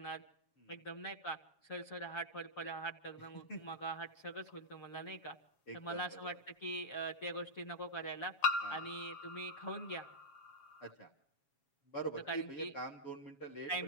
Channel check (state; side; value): late; right; 7.2 ms